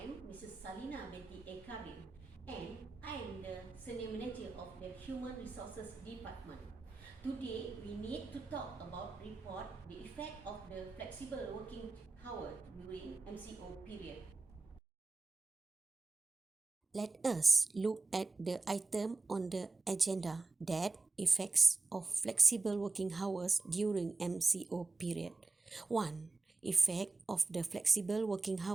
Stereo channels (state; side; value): quieter; left; 3.5 dB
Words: Mrs. Salina Betty Ekarim, and I am the Senior Manager of the Human Resources Department. Today, we need to talk about report the effect of the flexible working hour during MCO period. Let us look at the item on the agenda that effects of flexible working hours during MCO period. 1. Effect of the flexible working